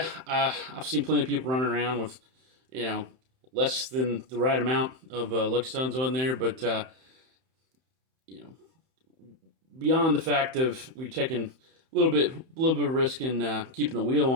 I've seen plenty of people running around with, you know, less than the right amount of lug studs on there, but you know, beyond the fact of we taking a little bit of risk in keeping the wheel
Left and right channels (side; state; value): left; late; 31 ms